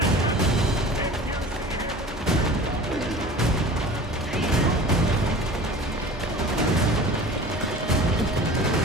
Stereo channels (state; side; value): normal; both; correlation 0.40